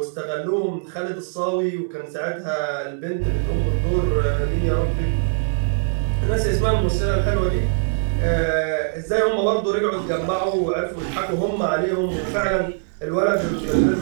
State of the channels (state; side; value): silent; left; digital silence